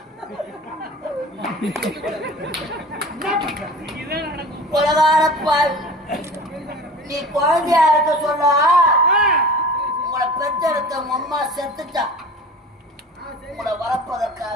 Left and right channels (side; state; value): both; normal; correlation 0.38